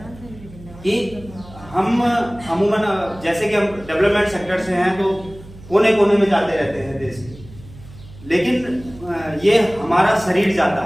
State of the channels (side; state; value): right; noise; hum, 19 dB below the sound